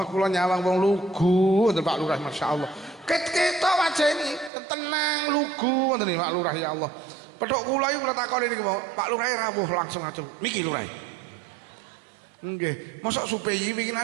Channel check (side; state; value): left; drops out; at 4.5 s